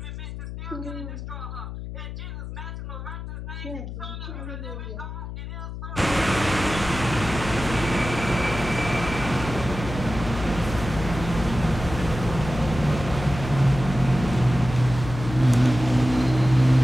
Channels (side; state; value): left; noise; hum, 8 dB below the sound